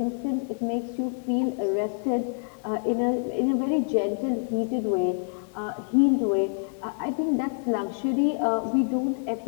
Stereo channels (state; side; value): silent; right; digital silence